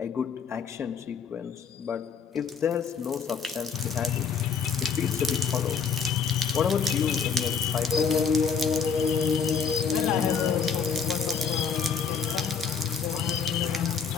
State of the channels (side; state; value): right; quieter; 6.3 dB